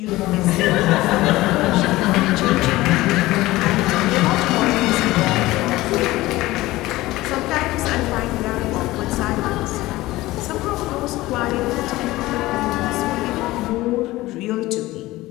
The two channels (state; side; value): quieter; right; 18.2 dB